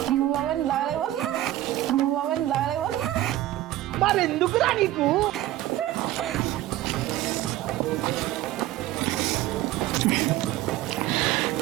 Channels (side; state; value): left; quieter; 14.8 dB